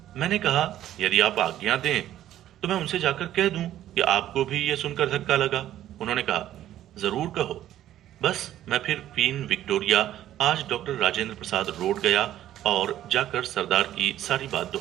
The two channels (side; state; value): left; quieter; 12.5 dB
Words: मैंने कहा, यदि आप आज्ञा दें तो मैं उनसे जाकर कह दूं कि आपको भी ये सुनकर धक्का लगा। उन्होंने कहा, जरूर कहो। बस मैं फिर क्वीन विक्टोरिया आज डॉक्टर राजेंद्र प्रसाद रोड गया और जाकर सरदार की सारी बात